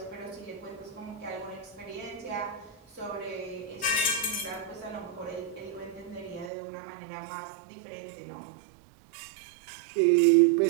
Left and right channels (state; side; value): drops out; left; at 6.5 s